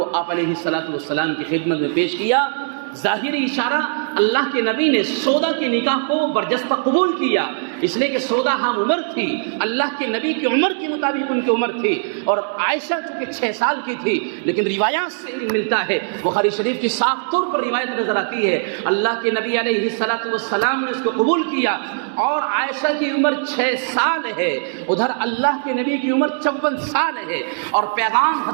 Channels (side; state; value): left; silent; digital silence